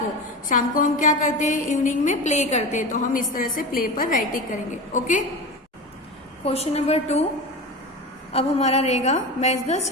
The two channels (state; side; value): normal; both; correlation 0.26